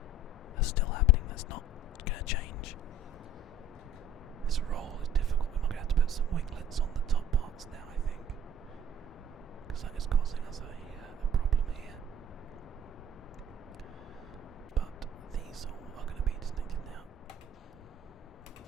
that's still happening. That's not going to change. This roll is difficult. We're going to have to put some winglets on the top parts now, I think, because that is causing us a problem here. But these all are going to be disconnected now.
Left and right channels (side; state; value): both; normal; correlation 0.48